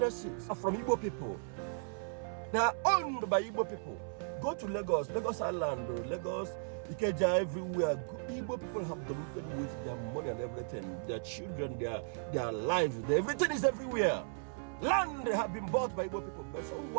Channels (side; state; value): left; silent; 54 dB below the other